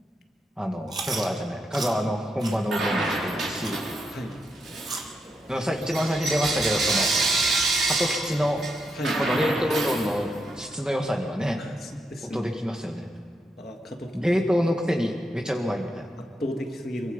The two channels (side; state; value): both; normal; correlation 0.82